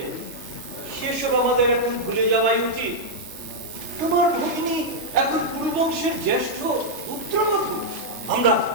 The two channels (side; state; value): left; late; 3.3 ms